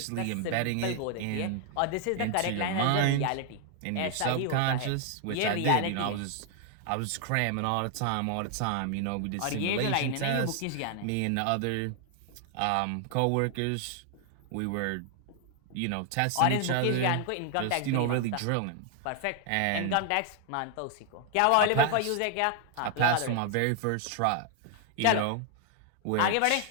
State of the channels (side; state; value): both; different; correlation 0.00